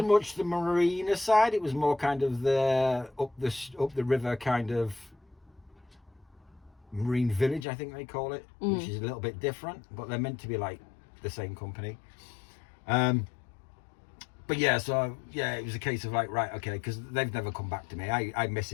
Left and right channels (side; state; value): right; drops out; at 7.7 s